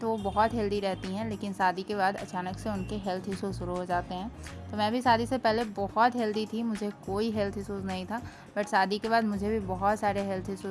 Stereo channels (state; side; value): identical; both; correlation 1.00